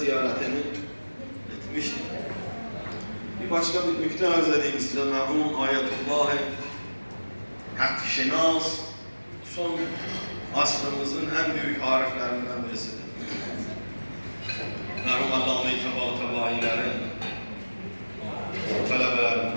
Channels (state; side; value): inverted; both; correlation -1.00